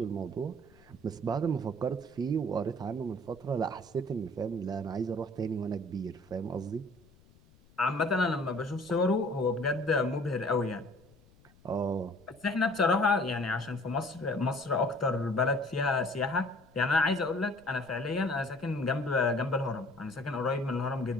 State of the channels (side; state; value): left; noise; rumble, 28 dB below the sound